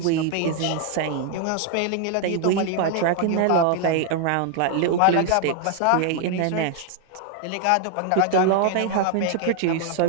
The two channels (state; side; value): different; both; correlation 0.00